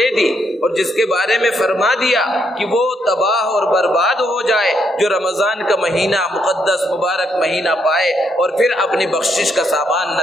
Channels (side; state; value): both; normal; correlation 0.76